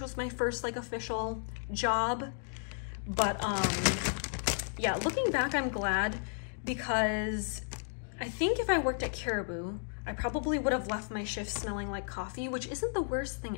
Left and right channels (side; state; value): right; silent; digital silence